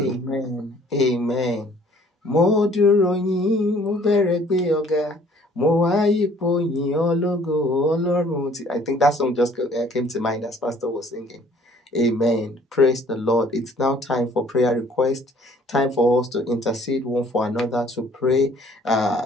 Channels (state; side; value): normal; both; correlation 0.57